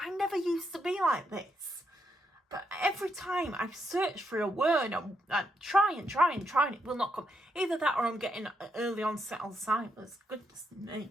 never used to be like this. But every time I search for a word, I try and it will not come. Either that or I'm getting early onset Alzheimer's. Goodness me.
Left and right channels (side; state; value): both; normal; correlation 0.80